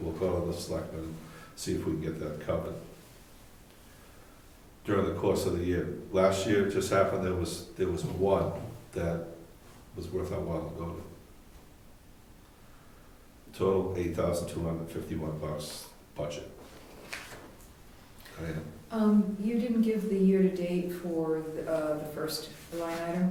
go to the selectmen and see if we can get that covered. During the course of the year. Last year, it just happened, there was one that was worth our while to go to. Total $8,251 budget. And You didn't give the year-to-date for the first line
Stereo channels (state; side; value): identical; both; correlation 1.00